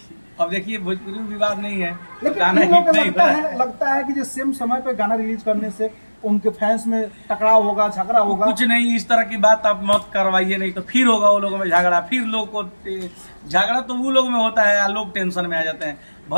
अब देखिए भोजपुरी में विवाद नहीं है, लेकिन गाना इन लोगों हिट को नहीं लगता है कि जो सेम समय पे गाना रिलीज करने से उनके फैंस में टकराव होगा, झगड़ा होगा। कुछ नहीं, इस तरह की बात आप मत करवाइए, नहीं तो फिर होगा वो लोगों में झगड़ा। फिर लोग को झगड़ा तो वो लोग में होता है, लोग टेंशन में आ जाते हैं।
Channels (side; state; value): both; inverted; correlation -1.00